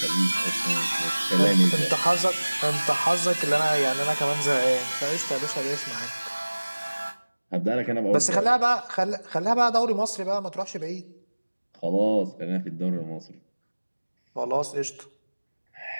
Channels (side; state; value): both; inverted; correlation -1.00